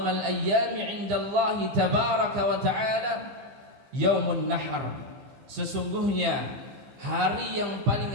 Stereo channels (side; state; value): left; late; 15 ms